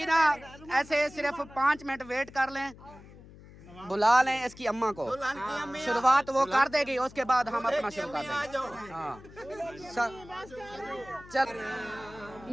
ना ऐसे सिर्फ 5 मिनट वेट कर लें, बुला लें इसकी अम्मा को। शुरुआत वो कर देगी, उसके बाद हम अपना शुरू कर देंगे। हाँ चल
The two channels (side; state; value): left; noise; hum, 20 dB below the sound